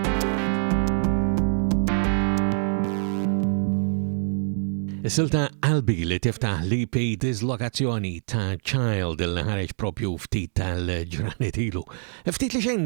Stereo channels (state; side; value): silent; left; 61 dB below the other